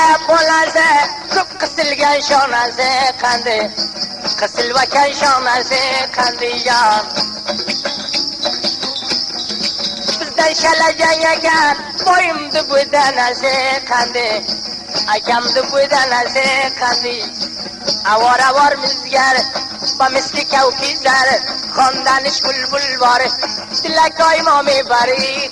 bolaze, köp kısılgan şonaze kendi. Kısılvaken şonaze kendi can. Bizden şalacan yagan, boyumdu bu deneze kendi. Akamdı bu deneze kendi. Avar avar müzgar, ba misli kevkizar. Kondaniş bulbul var, dilek aymami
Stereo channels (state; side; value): identical; both; correlation 1.00